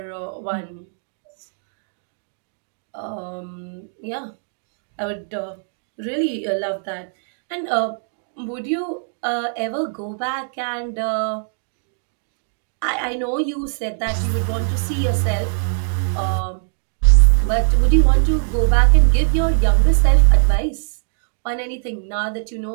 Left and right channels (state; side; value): silent; left; digital silence